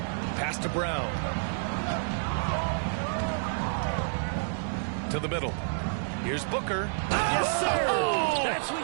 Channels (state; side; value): silent; left; digital silence